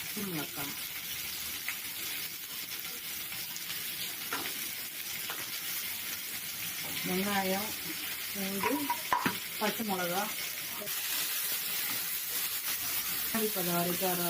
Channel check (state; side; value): identical; both; correlation 1.00